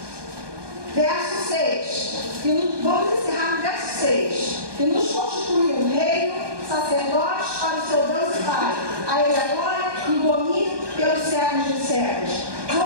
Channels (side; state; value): left; late; 1.2 ms